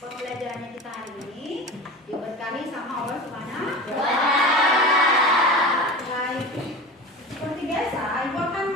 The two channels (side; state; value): both; normal; correlation 0.31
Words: kita hari ini diberkahi sama Allah Subhanahu wa Ta'ala. Baik, seperti biasa Ibu akan